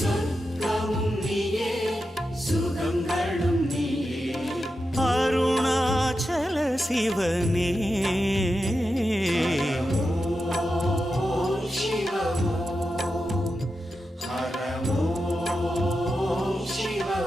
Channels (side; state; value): both; normal; correlation 0.89